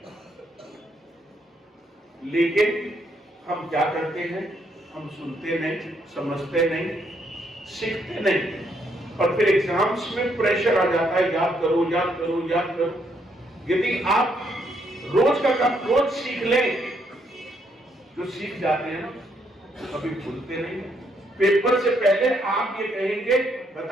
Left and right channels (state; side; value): normal; both; correlation 0.73